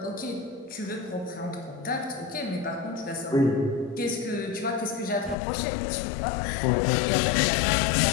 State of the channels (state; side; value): drops out; right; at 5.4 s